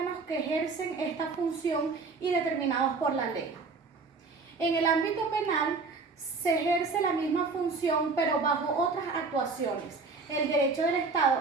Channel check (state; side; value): quieter; left; 4.2 dB